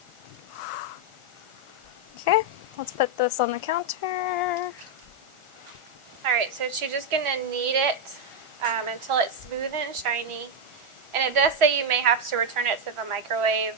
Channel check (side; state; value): left; late; 1.4 ms